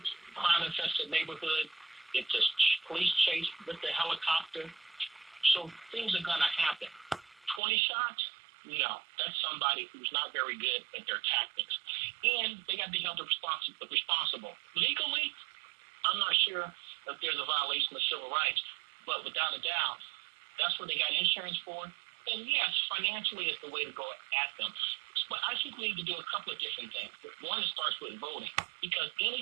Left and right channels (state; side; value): drops out; left; at 7.6 s